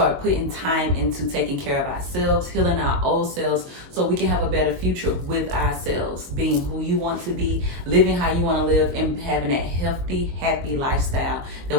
putting time into taking care of ourselves, healing our old selves so we can have a better future with ourselves, being who you want to be, living how you want to live, and having that healthy, happy lifestyle that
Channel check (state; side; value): late; left; 22 ms